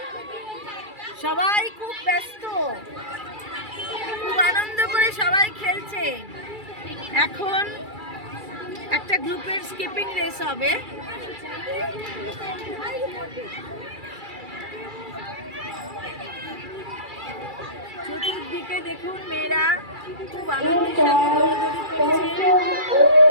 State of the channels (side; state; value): left; late; 2.3 ms